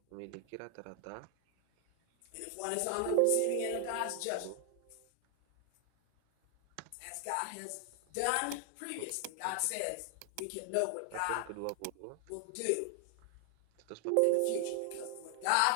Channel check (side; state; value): both; different; correlation 0.00